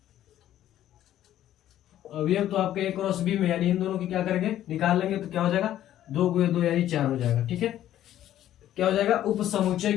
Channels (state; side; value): quieter; right; 12.2 dB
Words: अवयव तो आपके ए क्रॉस बी में, यानी इन दोनों की क्या करेंगे निकाल लेंगे, तो क्या हो जाएगा 2 गुणे 2 यानी 4 हो जाएगा, ठीक है। क्या हो जाएगा, उप समुच्चय